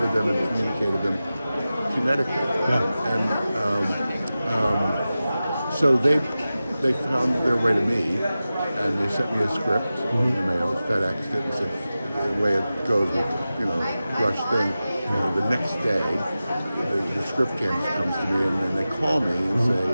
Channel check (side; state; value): both; inverted; correlation -0.94